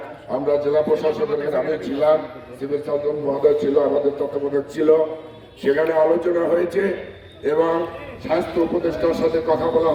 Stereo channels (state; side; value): identical; both; correlation 1.00